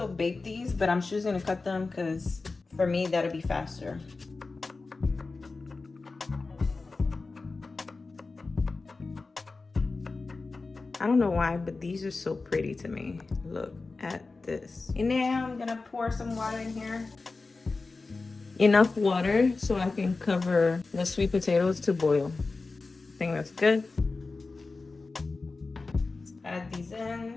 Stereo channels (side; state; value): right; quieter; 3.8 dB